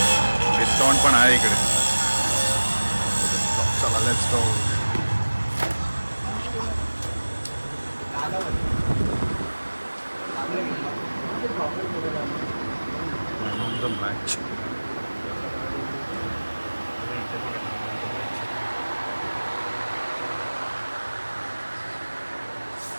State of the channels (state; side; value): inverted; both; correlation -1.00